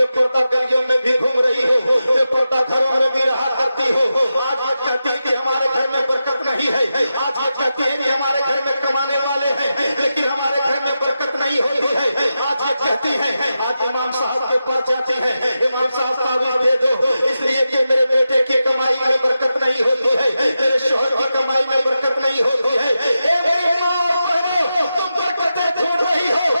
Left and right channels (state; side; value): inverted; both; correlation -0.90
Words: پردہ گلیوں میں بھی گھوم رہی ہو، بے پردہ گھروں میں بھی رہا کرتی ہو، آج یہ کہتی ہے کہ ہمارے گھر میں برکت نہیں ہے، آج یہ کہتی ہے کہ ہمارے گھر میں کمانے والے ہیں لیکن ہمارے گھر میں برکت نہیں ہوتی ہے، آج ये कहती है, आज इमाम साहब के पास जाती है, इमाम साहब तावीज़ दे दो, इसलिए कि मेरे बेटे की कमाई में बरकत नहीं होती है, मेरे शोहर की कमाई में बरकत नहीं होती है। ए मेरे माँ और बहनों, तुम बरकतें ढूंढ रही हो,